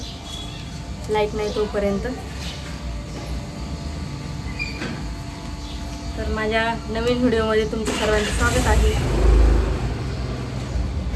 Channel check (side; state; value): both; identical; correlation 1.00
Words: लाईट नाही तोपर्यंत। तर माझ्या नवीन व्हिडिओमध्ये तुमचं सर्वांचं स्वागत आहे।